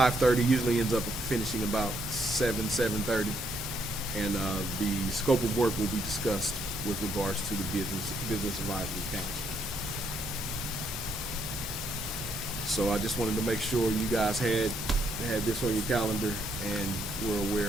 usually ends up finishing about 7:30, and the scope of work will be discussed with regards to the Business Advisory Council. So I just wanted to make sure you guys had this on your calendar and were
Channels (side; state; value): both; normal; correlation 0.73